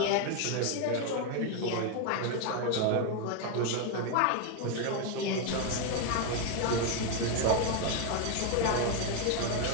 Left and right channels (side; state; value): both; different; correlation 0.01